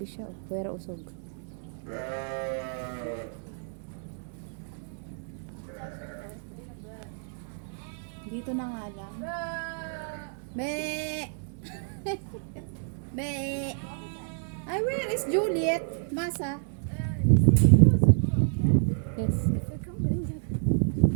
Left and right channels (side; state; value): left; silent; digital silence